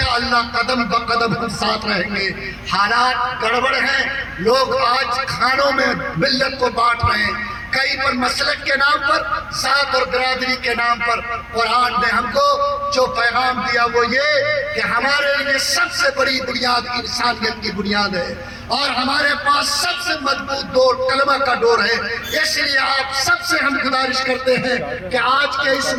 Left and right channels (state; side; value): identical; both; correlation 1.00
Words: قدم بقدم ہم ساتھ رہیں گے. حالات گڑبڑ ہیں, لوگ آج کھانوں میں ملت کو بانٹ رہے ہیں, کئی پر مسلک کے نام پر, ذات اور برادری کے نام پر. قرآن نے ہم کو جو پیغام دیا وہ یہ کہ ہمارے لیے سب سے بڑی بنیاد انسانیت کی بنیاد ہے اور ہمارے پاس سب سے مضبوط ڈور کلمہ کا ڈور ہے. اس لیے آپ سب سے ہم گزارش کرتے ہیں کہ آج کے اس